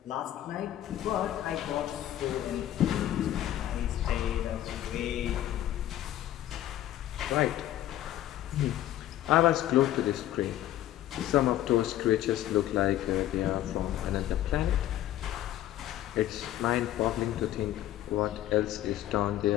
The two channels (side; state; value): right; quieter; 13.1 dB